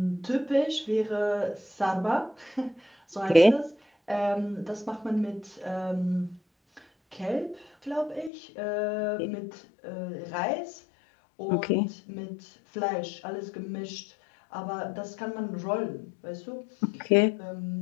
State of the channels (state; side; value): drops out; right; at 8.3 s